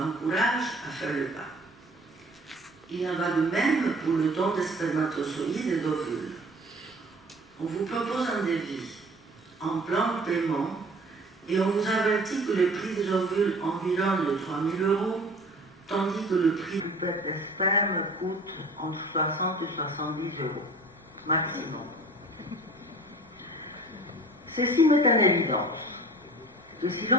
à faire le pas. Il en va de même pour le don des spermatozoïdes et d'ovules. On vous propose un devis en plan de paiement et on vous avertit que le prix des ovules environne les 3 000 €, tandis que le prix du pet de sperme coûte entre 60 et 70 € maximum. Ceci met en évidence que si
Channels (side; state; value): both; normal; correlation 0.46